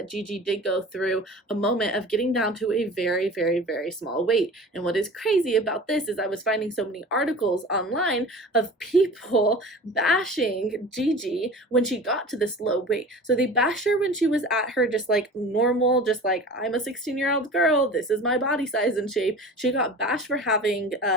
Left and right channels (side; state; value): both; normal; correlation 0.38